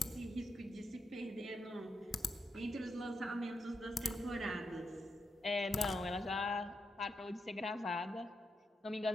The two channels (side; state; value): both; normal; correlation 0.84